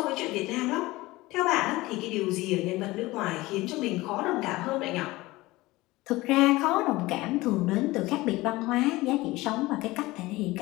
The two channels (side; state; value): right; quieter; 19.8 dB